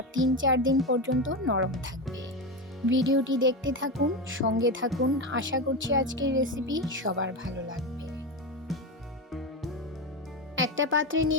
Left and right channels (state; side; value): normal; both; correlation 0.17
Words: ৩-৪ দিন পর্যন্ত নরম থাকবে। ভিডিওটি দেখতে থাকুন, সঙ্গে থাকুন। আশা করছি আজকের রেসিপি সবার ভালো লাগবে। একটা পাত্রে